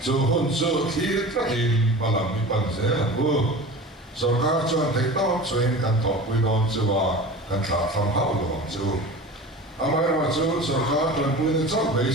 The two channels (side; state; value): both; normal; correlation 0.35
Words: chu hun chu thir tra in balam mi pan ze bu sarkar chuan thei to chuan kan tho pui don chu wa kan tha phang hau lo chu amai ra chu sarkar chuan pui ni chok bei